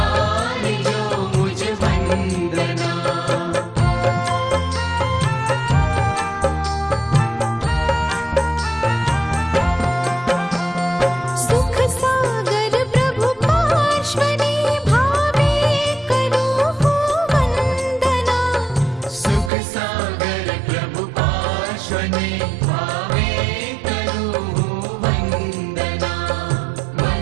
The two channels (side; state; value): left; drops out; at 19.5 s